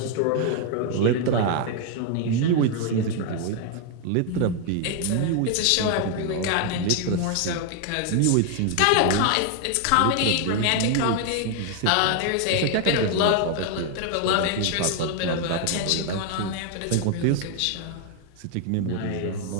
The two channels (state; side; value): different; both; correlation 0.00